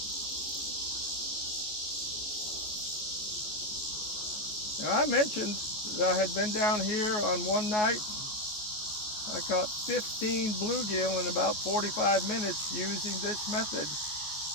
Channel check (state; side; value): late; right; 14 ms